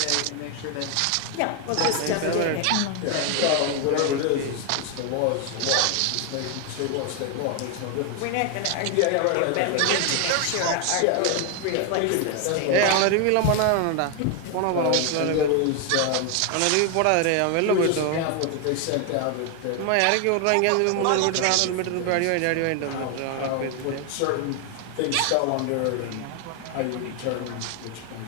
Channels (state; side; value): different; both; correlation 0.01